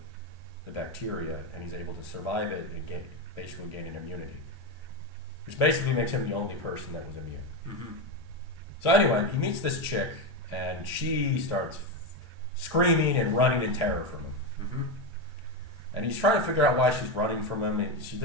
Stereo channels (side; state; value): both; normal; correlation 0.12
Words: bacteria, and he's able to survive it and basically gain an immunity, which basically makes him the only person that was immune. Mm-hmm. So anyway, he meets this chick, and she starts screaming and running in terror from him. Mm-hmm. And he's trying to figure out why she's running from him, and she